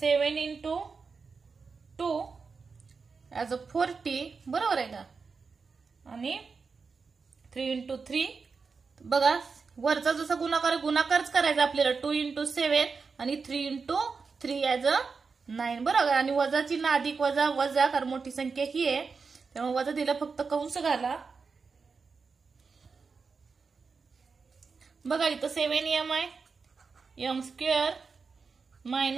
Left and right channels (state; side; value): quieter; left; 4.9 dB